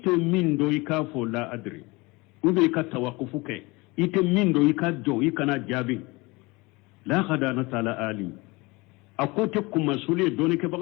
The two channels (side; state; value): right; quieter; 24.3 dB